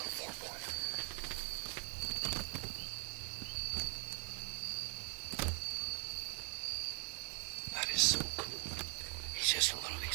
4-pointer. That is so cool. He's just a little,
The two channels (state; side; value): quieter; left; 35.7 dB